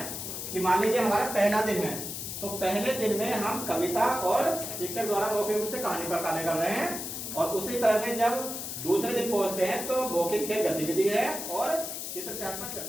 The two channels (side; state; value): left; noise; hiss, 6 dB below the sound